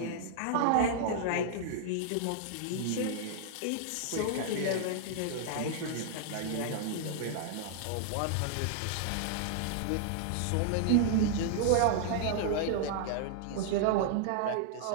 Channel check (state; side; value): different; both; correlation -0.01